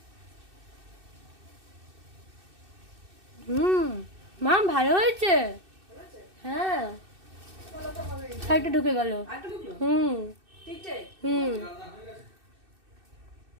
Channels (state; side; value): late; left; 2.6 ms